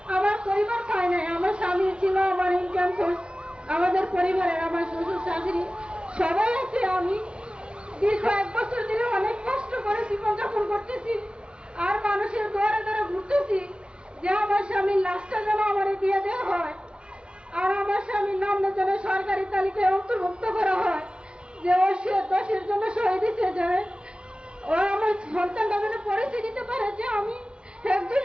আমার পরিবার পায় নাই। আমার স্বামী ছিল আমার ইনকাম সোর্স, আমাদের পরিবারের আমার শ্বশুর শাশুড়ি সবাই আছে। আমি দীর্ঘ 1 বছর ধরে অনেক কষ্ট করে জীবনযাপন করতেছি, আর মানুষের দ্বারে দ্বারে ঘুরতেছি যে আমার স্বামীর লাশটা যেন আমার দিয়ে দেওয়া হয়, আর আমার স্বামীর নাম যেন সরকারি তালিকায় অন্তর্ভুক্ত করা হয়, যে ও দেশের জন্য শহীদ হিসেবে ও আমার সন্তানটা যেন পরিচয় দিতে পারে যে আমি একজন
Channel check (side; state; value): left; late; 0.055 ms